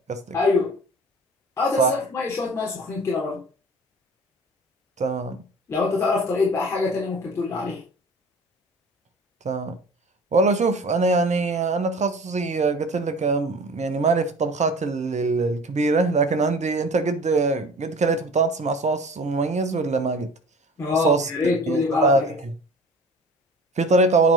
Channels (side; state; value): both; normal; correlation 0.42